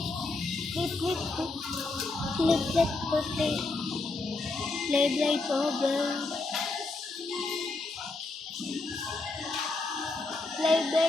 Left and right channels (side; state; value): right; quieter; 3.4 dB